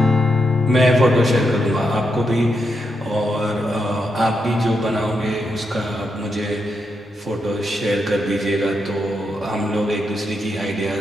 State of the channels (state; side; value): normal; both; correlation 0.83